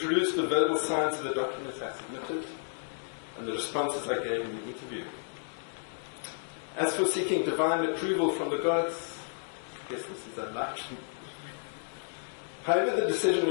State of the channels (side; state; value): right; silent; digital silence